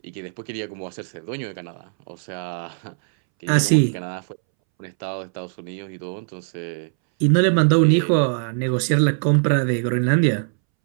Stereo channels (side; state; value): left; silent; 64 dB below the other